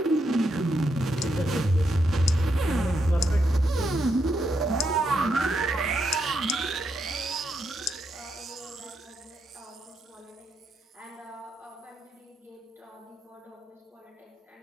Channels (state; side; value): normal; both; correlation 0.80